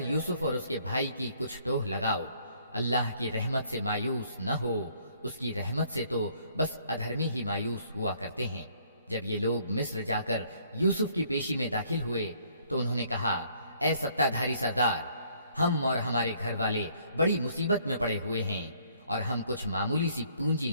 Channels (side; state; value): both; inverted; correlation -0.64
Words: یوسف اور اس کے بھائی کی کچھ ٹوہ لگاؤ، اللہ کی رحمت سے مایوس نہ ہو، اس کی رحمت سے تو بس ادھرمی ہی مایوس ہوا کرتے ہیں۔ جب یہ لوگ مصر جا کر یوسف کی پیشی میں داخل ہوئے تو انہوں نے کہا، اے ستادھاری سردار، ہم اور ہمارے گھر والے بڑی مصیبت میں پڑے ہوئے ہیں اور ہم کچھ معمولی سی پونجی